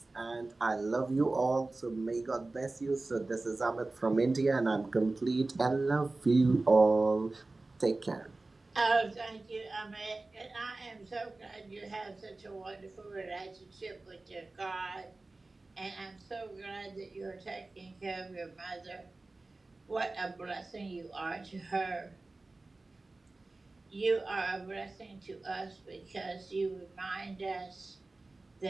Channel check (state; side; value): quieter; left; 3.2 dB